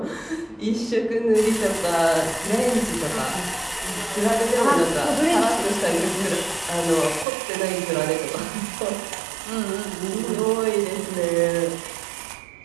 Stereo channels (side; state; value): left; drops out; at 7.2 s